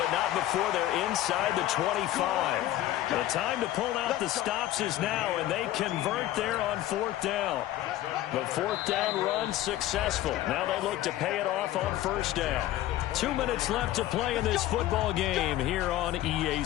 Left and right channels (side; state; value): right; quieter; 14.2 dB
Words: not before they're inside the 25. The time to pull out the stops is now, and they convert there on 4th down. The 4th down run successful. Now they look to pay it off on 1st down. 2 minutes left to play in this football game here on EA